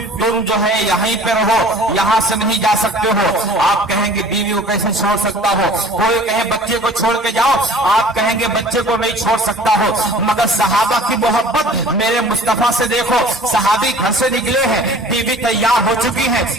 تم جو ہے یہیں پہ رہو, یہاں سے نہیں جا سکتے ہو. آپ کہیں گے بیوی کو کیسے چھوڑ سکتا ہو. کوئی کہے بچے کو چھوڑ کے جاؤ, آپ کہیں گے بچے کو نہیں چھوڑ سکتا ہو. مگر صحابہ کی محبت میرے مصطفیٰ سے دیکھو. صحابی گھر سے نکلے ہیں, بیوی تیار ہو چکی ہے.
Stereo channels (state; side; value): normal; both; correlation 0.47